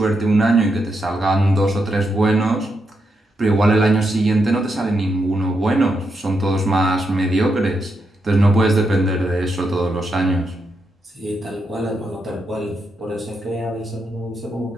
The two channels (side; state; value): both; normal; correlation 0.83